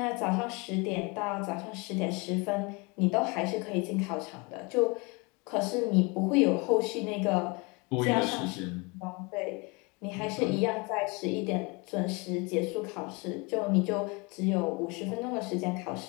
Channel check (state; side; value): quieter; right; 28.5 dB